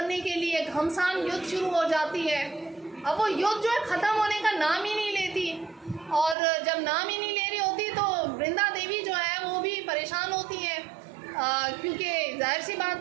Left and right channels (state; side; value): drops out; left; at 6.4 s